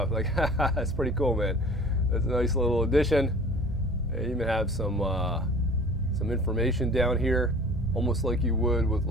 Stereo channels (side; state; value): both; normal; correlation 0.45